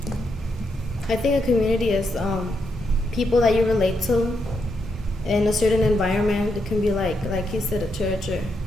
I think a community is people that you relate to in a certain environment. It can be like he said, a church or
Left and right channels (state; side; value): normal; both; correlation 0.81